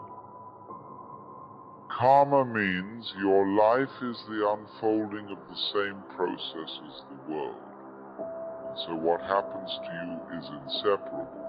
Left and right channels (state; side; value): identical; both; correlation 1.00